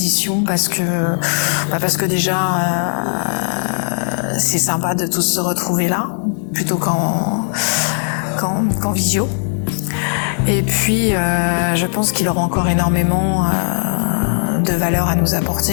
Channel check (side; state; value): right; silent; 67 dB below the other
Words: parce que déjà c'est sympa de tous se retrouver là plutôt qu'en visio. Et puis je pense qu'il aura encore énormément de valeur à nous